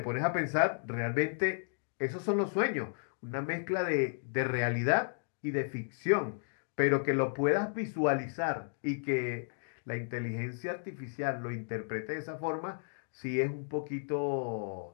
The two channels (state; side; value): silent; right; digital silence